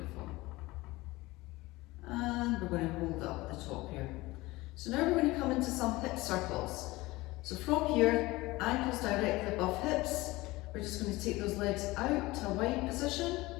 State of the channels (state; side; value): quieter; right; 20.3 dB